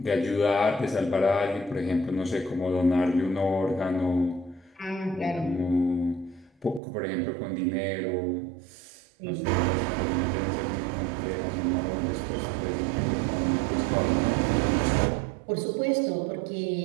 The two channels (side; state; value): left; drops out; at 6.8 s